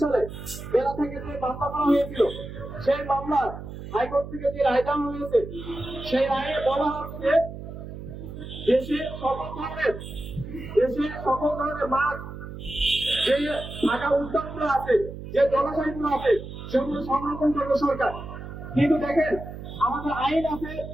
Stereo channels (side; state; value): right; noise; hum, 11 dB below the sound